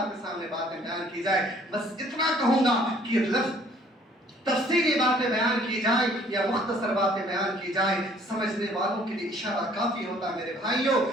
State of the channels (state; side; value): normal; both; correlation 0.58